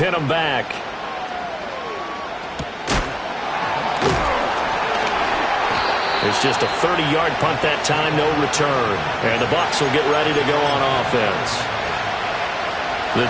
him back. It's just a 30-yard punt that time, no return. And the Bucs will get ready to go on offense. The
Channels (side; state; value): both; identical; correlation 1.00